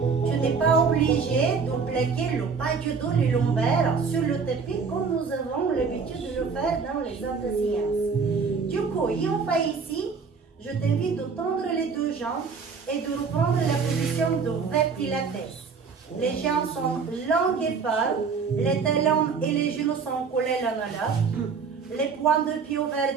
Tu n'es pas obligé de plaquer le bas du dos, les lombaires sur le tapis comme nous avons l'habitude de le faire dans les autres séances. Du coup, on fait ici, je t'invite de tendre les deux jambes et de reprendre la position de vertilates. Les jambes sont longues et fortes, les talons et les genoux sont collés l'un à l'autre. Les points de pied ouverts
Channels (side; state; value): left; quieter; 5.4 dB